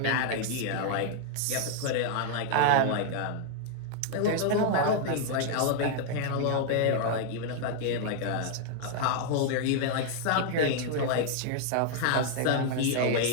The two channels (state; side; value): different; both; correlation 0.00